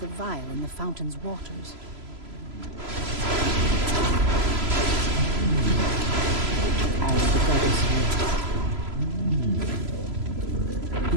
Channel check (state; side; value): late; left; 3.0 ms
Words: vial in the fountain's waters. As the goddess wills.